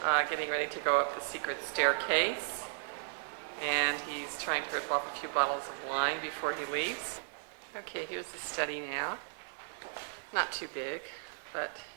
getting ready to go up the secret staircase. And he's trying to rip off a few bottles of wine before he leaves. Okay, here's the study now. Not too big, but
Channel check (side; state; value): left; silent; digital silence